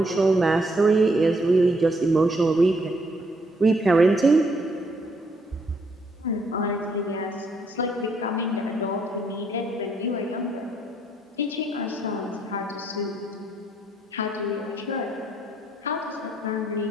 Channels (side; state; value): both; normal; correlation 0.71